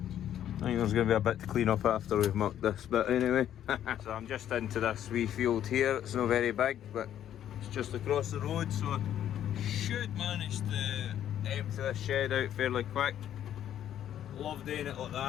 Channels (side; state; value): right; quieter; 10.8 dB